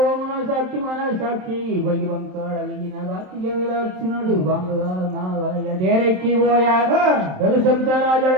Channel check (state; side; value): late; left; 27 ms